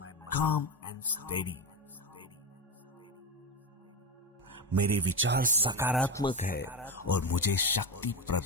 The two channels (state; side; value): normal; both; correlation 0.14